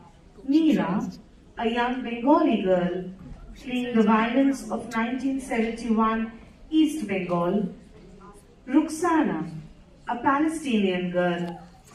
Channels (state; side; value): identical; both; correlation 1.00